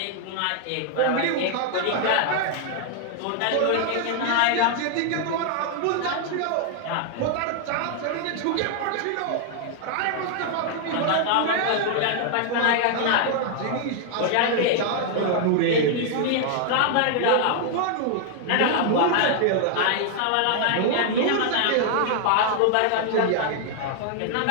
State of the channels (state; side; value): different; both; correlation 0.00